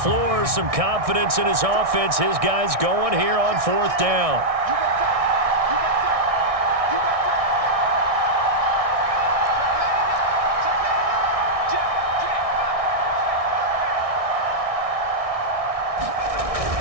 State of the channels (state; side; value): late; left; 1.6 ms